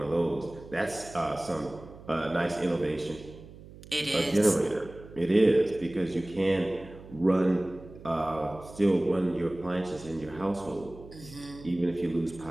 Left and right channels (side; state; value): right; noise; hum, 18 dB below the sound